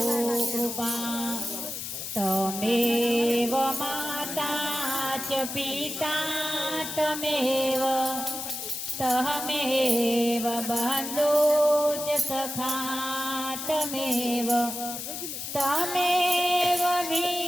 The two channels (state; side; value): noise; left; hiss, 7 dB below the sound